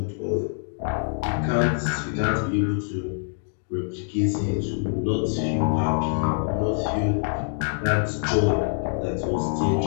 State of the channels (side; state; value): right; silent; digital silence